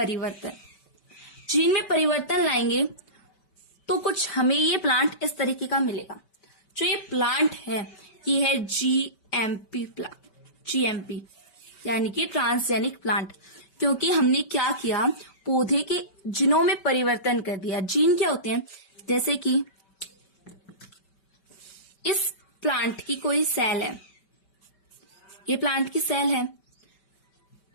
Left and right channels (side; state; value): right; late; 5.2 ms